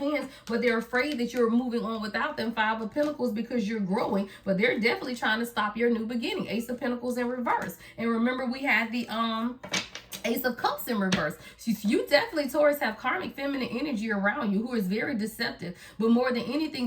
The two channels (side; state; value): both; identical; correlation 1.00